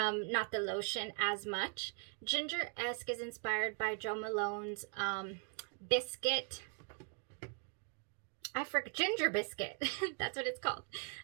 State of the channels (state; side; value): quieter; left; 39.3 dB